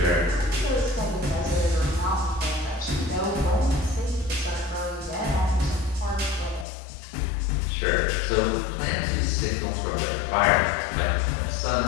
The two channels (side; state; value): right; drops out; at 6.7 s